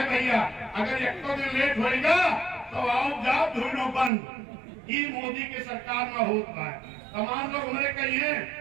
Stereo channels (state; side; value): drops out; left; at 4.1 s